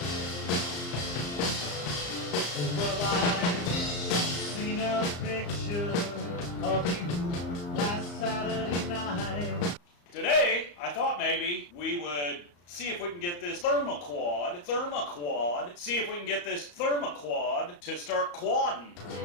Well, I've seen a picture of you last Saturday night. Today, I thought maybe we would see if we can get this thermoquad to start quadding.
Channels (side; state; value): right; late; 34 ms